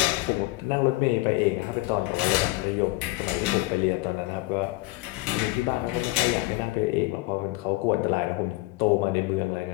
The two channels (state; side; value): quieter; right; 20.8 dB